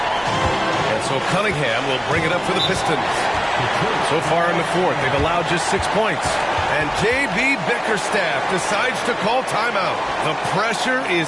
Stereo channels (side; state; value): both; identical; correlation 1.00